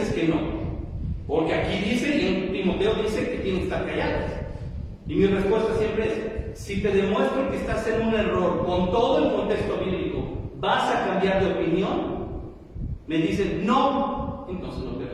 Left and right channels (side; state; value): both; identical; correlation 1.00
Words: que no? Porque aquí dice, y en Timoteo dice que tienen que estar callados. Y mi respuesta siempre es: si te demuestro que estás en un error con todo el contexto bíblico, ¿vas a cambiar de opinión? Me dicen, no, entonces no